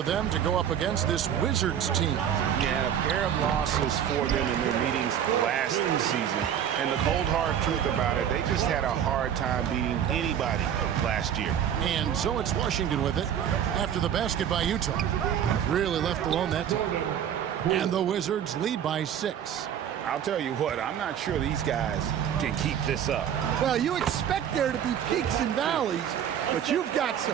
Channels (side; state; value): left; quieter; 9.3 dB